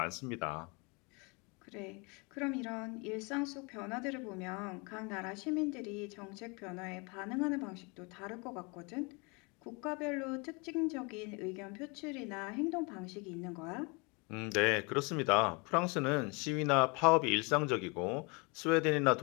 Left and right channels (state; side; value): quieter; right; 30.1 dB